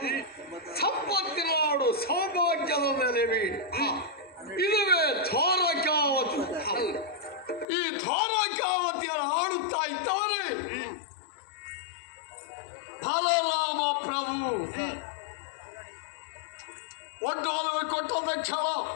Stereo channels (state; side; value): drops out; right; at 7.7 s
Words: ಸಂಪತ್ತಿನ ನಾಡು ಸೌಭಾಗ್ಯದ ಮೇಲೆ ಬೀಡಿ. ಇದುವೇ ದ್ವಾರಕಾವತಿ. ಈ ದ್ವಾರಕಾವತಿಯನ್ನು ಆಡುತ್ತಾ ಇದ್ದಾನೆ ಬಲರಾಮ ಪ್ರಭು. ಒಡ್ಡೋಲವು ಕೊಟ್ಟ ತಕ್ಷಣ